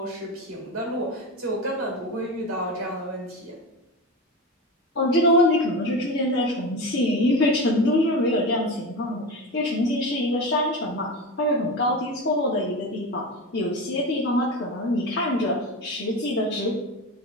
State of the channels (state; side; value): normal; both; correlation 0.24